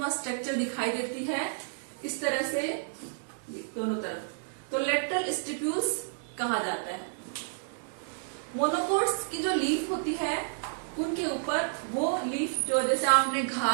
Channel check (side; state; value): left; silent; digital silence